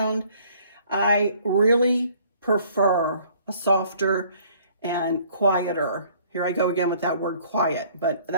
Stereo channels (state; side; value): inverted; both; correlation -0.58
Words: I really prefer a softer and quieter. Here I go again with that word quiet, but